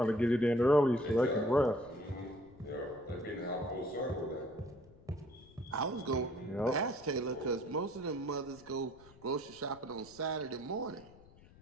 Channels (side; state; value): left; noise; rumble, 24 dB below the sound